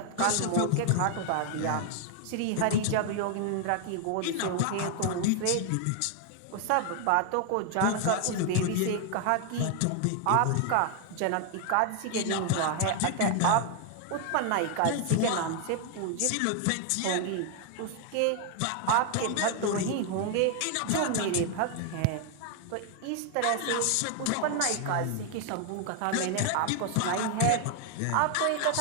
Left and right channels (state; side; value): different; both; correlation 0.00